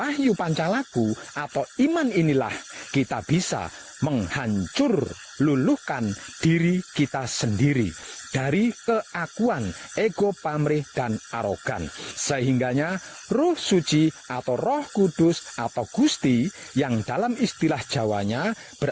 pancalaku atau iman, inilah kita bisa menghancur luluhkan diri kita sendiri dari keakuan, ego, pamrih, dan arogan. Sehingganya Roh Suci atau Roh Kudus atau Gusti, yang dalam istilah Jawanya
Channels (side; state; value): both; identical; correlation 1.00